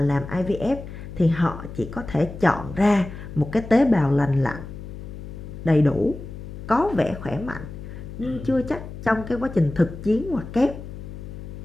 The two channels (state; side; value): noise; left; hum, 11 dB below the sound